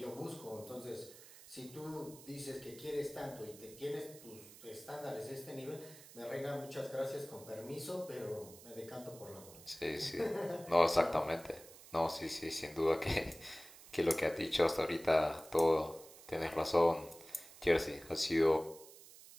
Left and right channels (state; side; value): noise; right; hiss, 19 dB below the sound